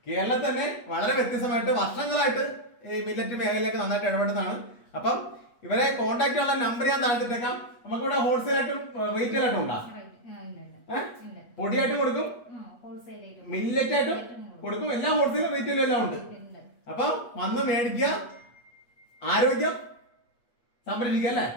കേരളത്തിൽ തന്നെ വളരെ വ്യത്യസ്തമായിട്ട് വർഷങ്ങളായിട്ട് ഈ മില്ലറ്റ് മേഖലയിലേക്ക് നന്നായിട്ട് ഇടപെടുന്നതാണ്. അപ്പം ഇവരെ കോൺടാക്ട് ചെയ്യാനുള്ള നമ്പർ ഞാൻ താഴ്ത്തിട്ടേക്കാം. നമുക്കിവിടെ ഹോൾസെയിൽ ആയിട്ടും റീറ്റെയിൽ ആയിട്ടും ഉണ്ടാ? പൊടിയായിട്ടും കൊടുക്കും, മില്ലറ്റ് ആയിട്ടും കൊടുക്കും. എല്ലാം ഹോൾസെയിലും റീറ്റെയിലും എല്ലാം ഉണ്ട്. അപ്പം വന്ന് മേടിക്കുക, ആരോഗ്യം സംരക്ഷിക്കുക അല്ലേ?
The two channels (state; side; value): late; right; 8.4 ms